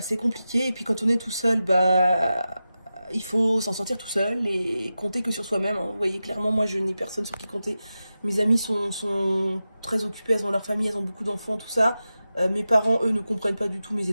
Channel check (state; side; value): inverted; both; correlation -0.92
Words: compliqué. Et puis quand on est tout seul, bah, il faut s'en sortir tout seul et compter que sur soi-même. Hein. Vous voyez, clairement, moi, je n'ai personne sur qui compter. Mes amis sont très occupées, elles ont leur famille, elles ont beaucoup d'enfants, tout ça. Mes parents, eux, ne comprennent pas du tout mes